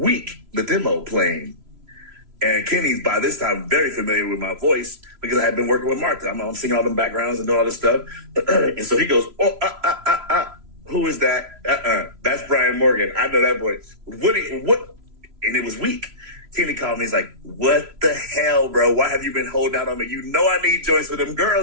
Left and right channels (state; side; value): late; left; 3.0 ms